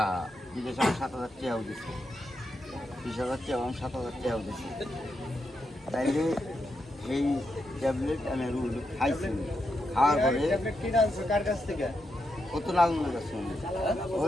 বিদেশে আমার 7,000 টাকাও দিছে 20,000 টাকা আমার 7,000 টাকাও দিছে তাইলে এই ট্যাবলেট আমি খাইছি খাওয়ার পরে কার কাছ থেকে কত নাজমুলের কাছে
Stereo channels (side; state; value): both; normal; correlation 0.84